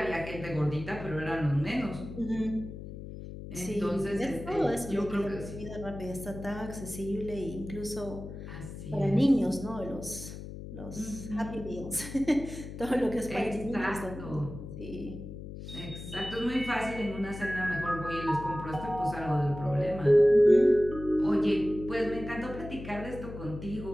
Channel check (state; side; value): noise; left; hum, 10 dB below the sound